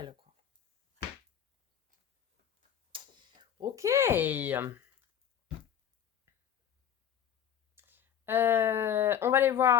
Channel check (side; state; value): right; quieter; 9.3 dB